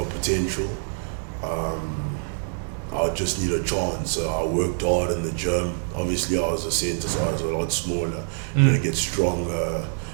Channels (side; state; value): left; silent; digital silence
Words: potential. I just need a chance. So I worked hard in the gym. Obviously I was a centre, so I was a lot smaller. You know, get stronger,